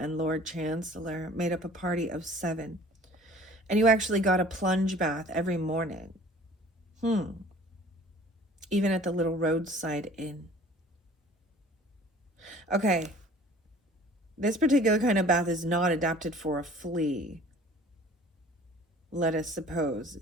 Lord Chancellor made up a party of 7. And you actually got a plunge bath every morning. Even at the little roadside inn. Okay. This particular kind of bath is not adapted for a flea. Let us suppose,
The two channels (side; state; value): both; normal; correlation 0.49